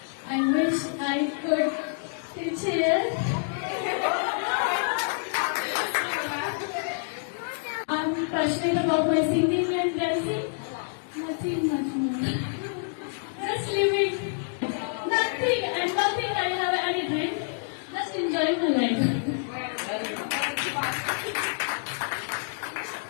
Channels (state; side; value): silent; right; digital silence